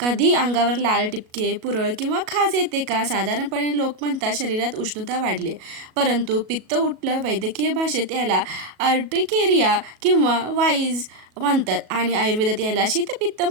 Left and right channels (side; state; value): left; late; 37 ms